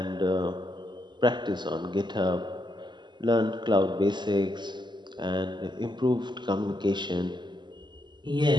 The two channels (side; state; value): left; late; 0.22 ms